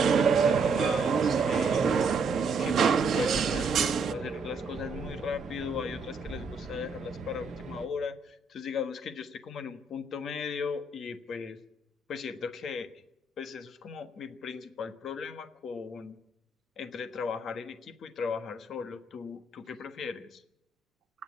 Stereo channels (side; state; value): left; quieter; 3.3 dB